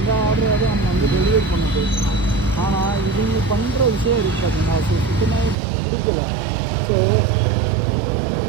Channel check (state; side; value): drops out; left; at 5.6 s